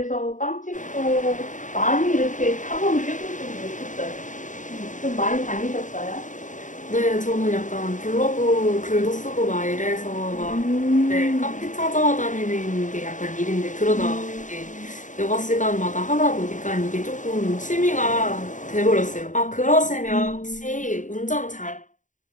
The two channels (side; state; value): right; late; 0.37 ms